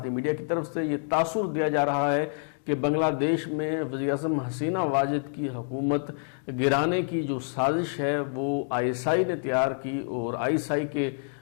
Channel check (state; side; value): silent; right; digital silence